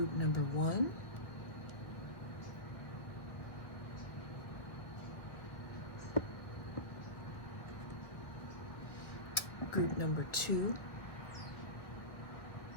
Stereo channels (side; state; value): right; late; 1.8 ms